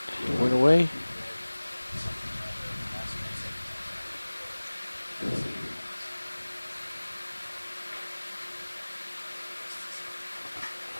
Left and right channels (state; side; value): inverted; both; correlation -1.00